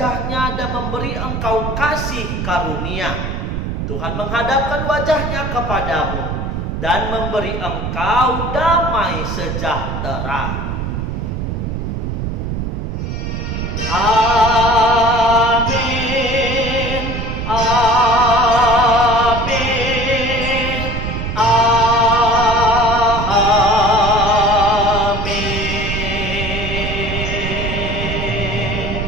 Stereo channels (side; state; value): right; noise; rumble, 3 dB below the sound